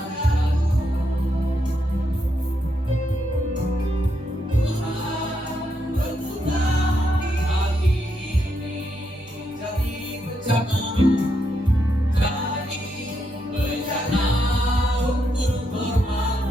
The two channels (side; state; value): both; normal; correlation 0.80